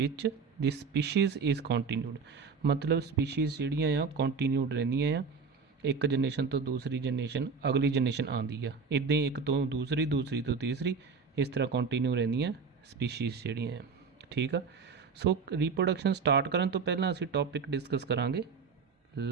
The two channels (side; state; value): left; quieter; 5.2 dB